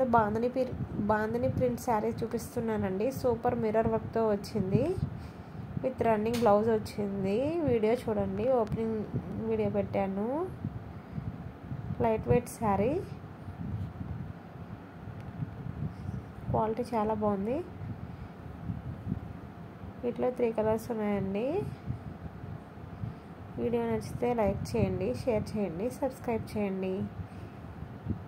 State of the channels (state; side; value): identical; both; correlation 1.00